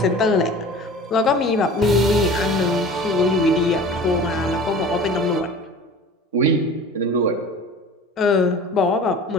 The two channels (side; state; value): both; normal; correlation 0.40